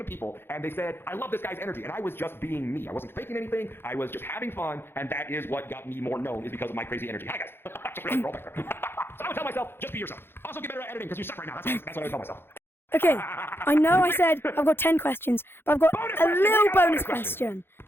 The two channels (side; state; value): right; late; 0.11 ms